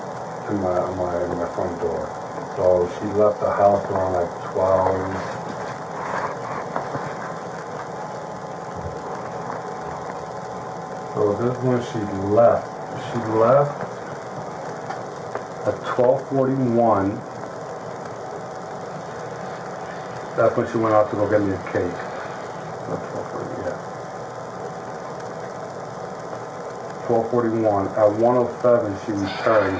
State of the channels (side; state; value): both; identical; correlation 1.00